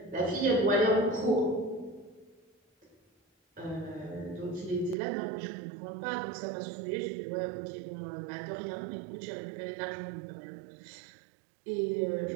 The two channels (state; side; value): drops out; left; at 5.0 s